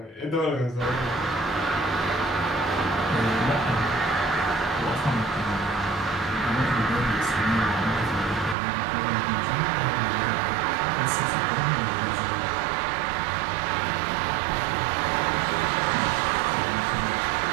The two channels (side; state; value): left; drops out; at 8.6 s